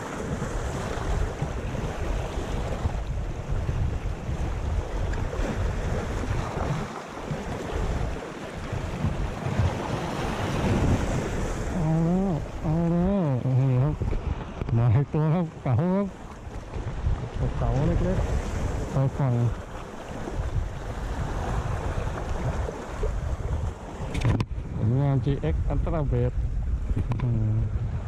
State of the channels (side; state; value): both; identical; correlation 1.00